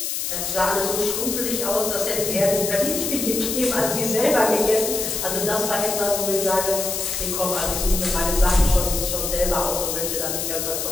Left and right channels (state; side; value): noise; left; hiss, 2 dB below the sound